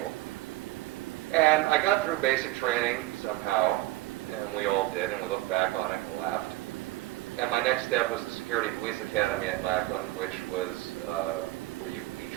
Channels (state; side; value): quieter; left; 17.6 dB